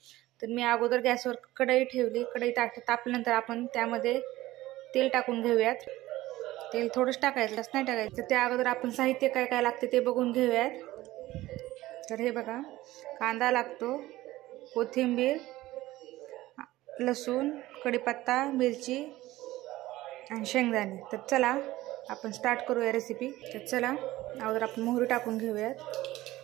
तर मी अगोदर गॅसवर कढई ठेवली. कढई तापल्यानंतर आपण त्यामध्ये तेल टाकून घेऊयात. तेल थोडंच टाकायचं, जास्त नाही टाकायचं. त्या अगोदर आपण साहित्य काय काय लागते ते बघून घेऊयात. तर हे बघा, कांदा लागतो, कोथिंबीर, लसूण, कढीपत्ता, मिरची आणि शेंगदाणे. तर चला आपण स्टार्ट करूया रेसिपी. तर चला अगोदर आपण मोहरी टाकून घेऊयात.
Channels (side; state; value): left; quieter; 16.9 dB